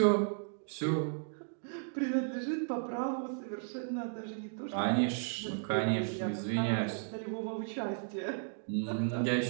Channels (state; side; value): silent; left; digital silence